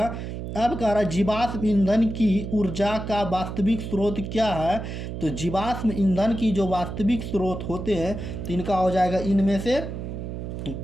अब कह रहा है जीवाश्म ईंधन की ऊर्जा का वास्तविक स्रोत क्या है। तो जीवाश्म ईंधन की जो वास्तविक स्रोत होते हैं तो इनका हो जाएगा इनमें से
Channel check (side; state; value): right; noise; hum, 7 dB below the sound